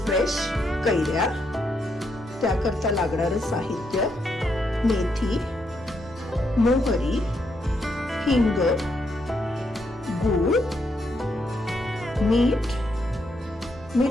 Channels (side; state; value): both; normal; correlation 0.78